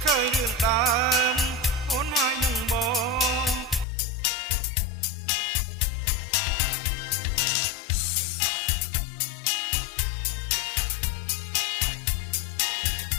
ឃើញរឿងដើមអូនហើយនឹងបងចូលជាតិនូឡងមុំផ្ដល់មកទៀមកាន់ដៃអូអត់ទៀតសាន់សូនយើងគៀកាយគ្នា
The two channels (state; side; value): drops out; right; at 3.9 s